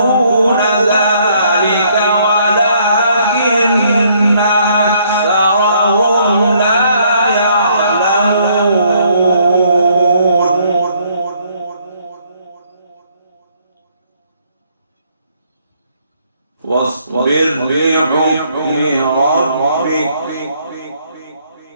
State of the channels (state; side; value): inverted; both; correlation -0.67